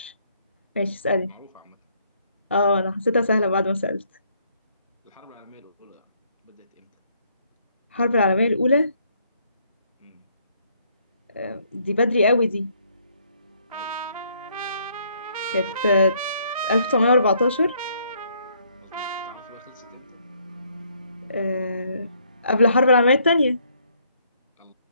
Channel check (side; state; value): both; inverted; correlation -0.68